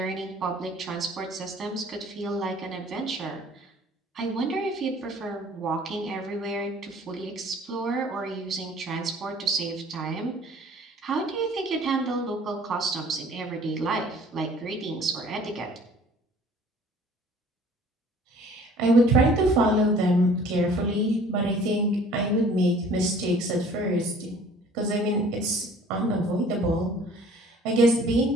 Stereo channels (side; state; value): both; normal; correlation 0.52